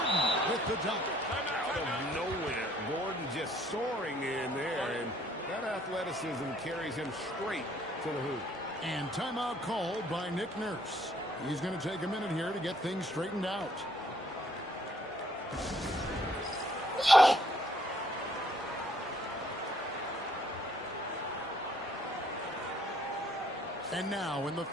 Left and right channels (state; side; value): normal; both; correlation 0.64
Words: with the dunk. Out of nowhere, Gordon just soaring in there, and that athleticism carries him straight to the hoop. And timeout called by Nick Nurse. He's going to take a minute here to get things straightened out. And now, in the